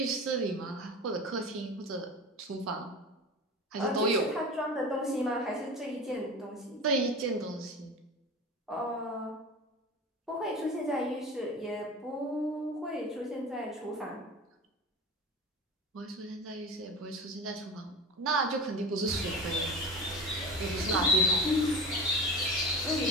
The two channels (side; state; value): both; normal; correlation 0.31